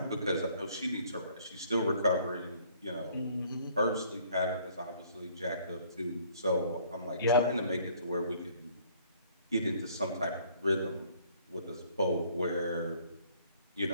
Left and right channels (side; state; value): both; inverted; correlation -0.59